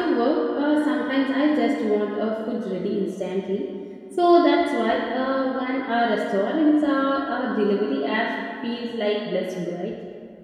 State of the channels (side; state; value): both; identical; correlation 1.00